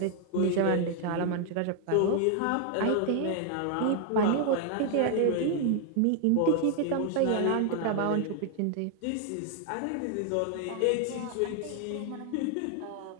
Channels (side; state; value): both; different; correlation 0.00